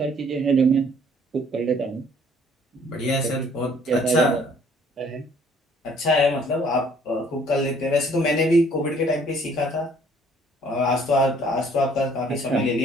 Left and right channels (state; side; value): normal; both; correlation 0.59